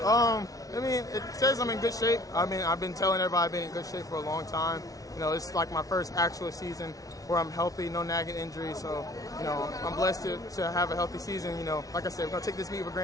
I mean, it says I'm in good shape. I mean, I've been telling everybody I've been in good shape for a long time. You know, it's like my first actual season where I'm healthy, no nagging injuries. So, you know, I'm blessed to have a healthy season. You know, like I said, we're going to take this meet with a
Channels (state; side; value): late; right; 0.18 ms